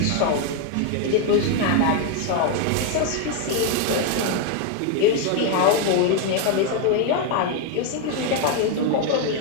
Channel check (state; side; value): different; both; correlation 0.01